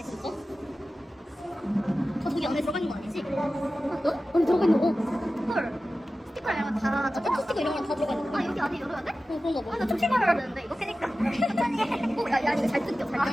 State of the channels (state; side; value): normal; both; correlation 0.95